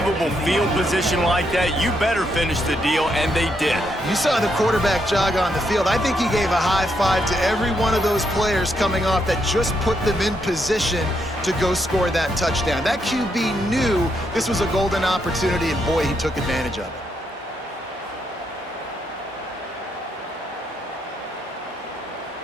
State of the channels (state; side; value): normal; both; correlation 0.78